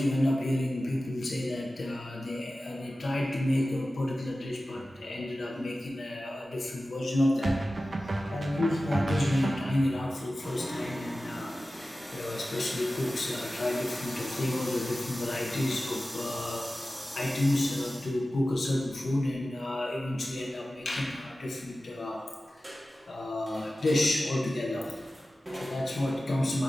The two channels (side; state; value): both; normal; correlation 0.95